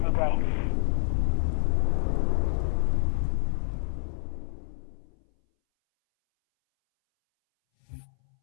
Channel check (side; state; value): right; silent; 59 dB below the other